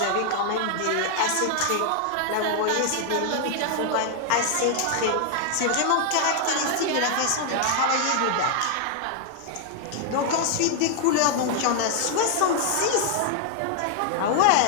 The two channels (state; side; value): different; both; correlation 0.00